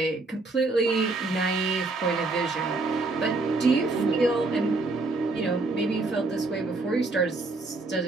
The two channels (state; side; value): quieter; left; 3.4 dB